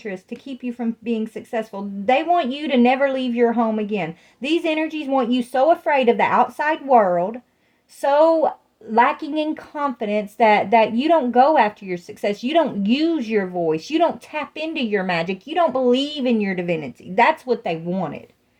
to keep you from being successful. They want you to never leave your home again. These energies want you so afraid of the outside world, so lacking in confidence that you don't go after your success. You don't use your voice. You don't tap into your magic. You don't believe in your divinity. That's what they wanted.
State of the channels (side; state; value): both; identical; correlation 1.00